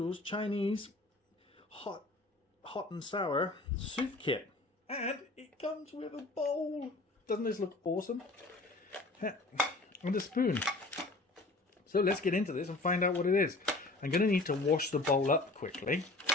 Chinese hot and sour soup kit. And it comes with a bowl. Doesn't this look awesome? And a spoon. So let's get into this and find out what it is. I'm going to need to wash the bowl up quickly.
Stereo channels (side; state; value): right; quieter; 3.1 dB